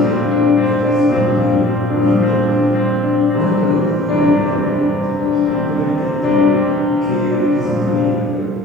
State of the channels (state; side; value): normal; both; correlation 0.51